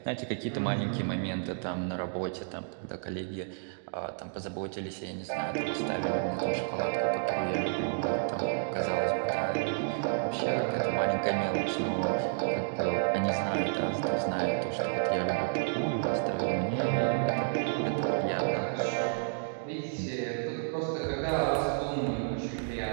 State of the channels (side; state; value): left; silent; digital silence